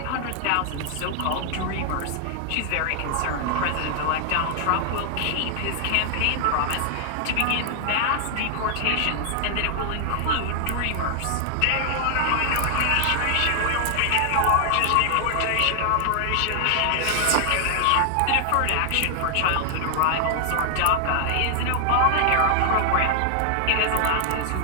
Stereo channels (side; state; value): both; different; correlation 0.00